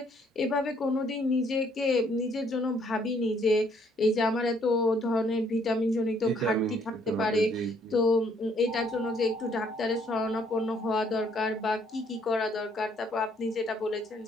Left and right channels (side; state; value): both; normal; correlation 0.66